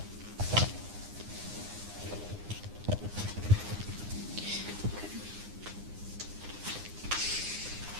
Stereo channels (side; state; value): left; late; 9.8 ms